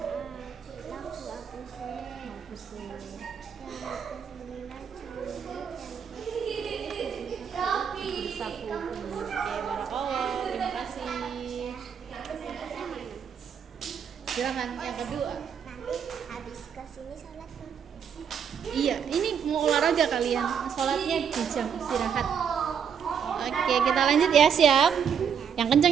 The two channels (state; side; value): quieter; left; 7.5 dB